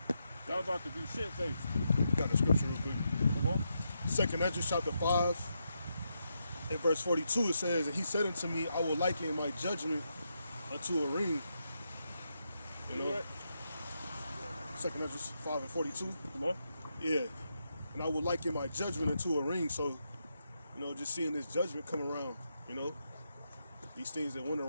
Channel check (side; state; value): both; inverted; correlation -0.83